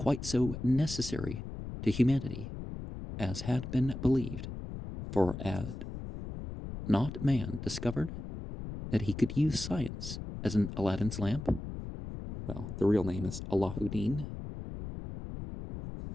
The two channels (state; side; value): noise; left; rumble, 8 dB below the sound